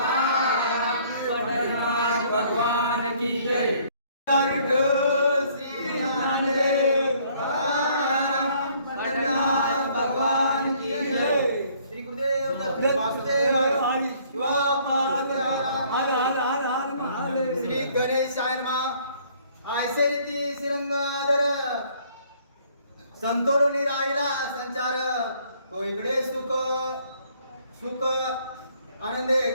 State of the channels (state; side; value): inverted; both; correlation -0.61